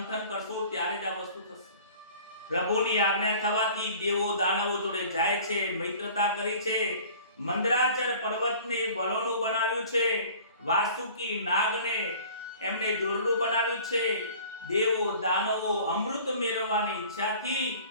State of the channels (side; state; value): both; inverted; correlation -0.46